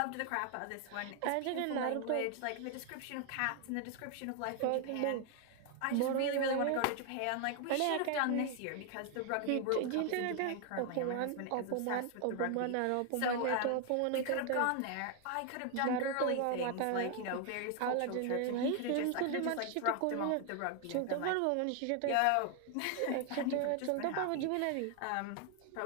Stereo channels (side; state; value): both; different; correlation 0.00